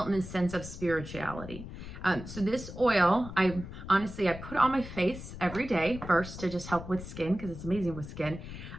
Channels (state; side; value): noise; left; rumble, 11 dB below the sound